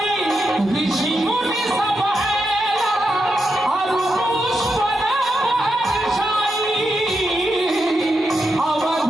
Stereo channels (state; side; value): normal; both; correlation 0.85